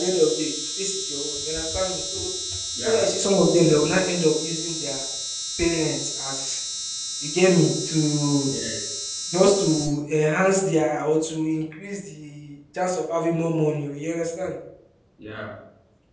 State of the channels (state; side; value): identical; both; correlation 1.00